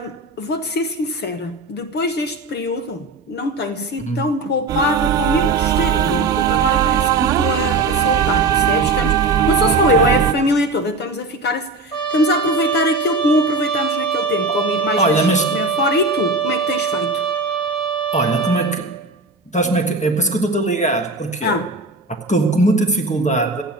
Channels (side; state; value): left; quieter; 3.1 dB